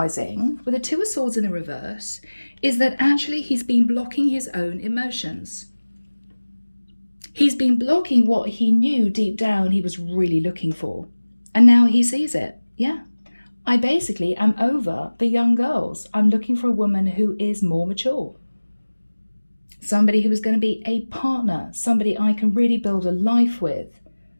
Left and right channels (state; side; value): inverted; both; correlation -1.00